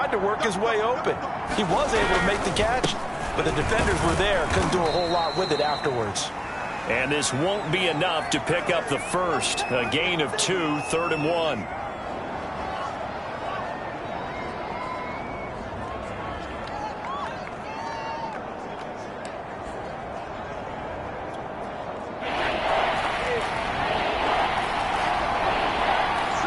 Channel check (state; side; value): identical; both; correlation 1.00